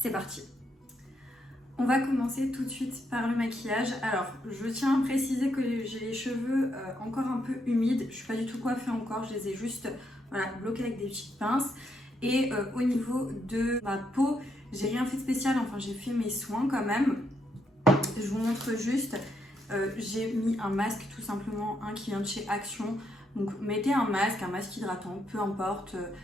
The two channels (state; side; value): normal; both; correlation 0.78